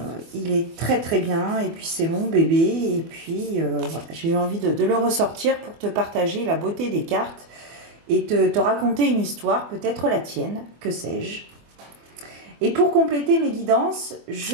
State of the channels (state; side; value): late; left; 24 ms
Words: il est très très bien. Et puis c'est mon bébé. Et puis voilà, j'ai eu envie de le ressortir pour te partager la beauté des cartes et te raconter une histoire, peut-être la tienne, que sais-je. Et pour compléter mes guidances,